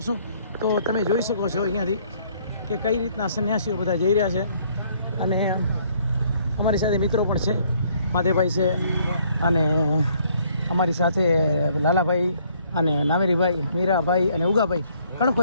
તો તમે જોઈ શકો છો અહીંયાથી કે કઈ રીતના સંન્યાસીઓ બધા જઈ રહ્યા છે અને અમારી સાથે મિત્રો પણ છે, માધેભાઈ છે અને અમારી સાથે લાલાભાઈ અને નામેરીભાઈ, મીરાભાઈ અને ઉગાભાઈ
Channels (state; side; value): inverted; both; correlation -0.64